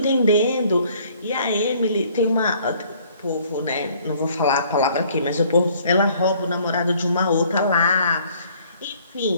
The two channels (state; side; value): inverted; both; correlation -0.59